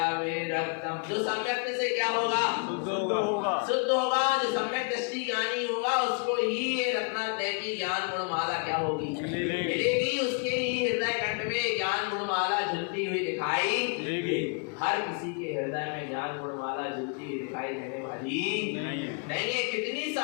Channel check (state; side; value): quieter; right; 38.0 dB